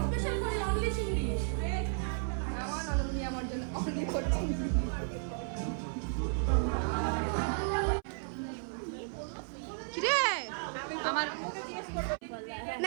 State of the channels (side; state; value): left; silent; 55 dB below the other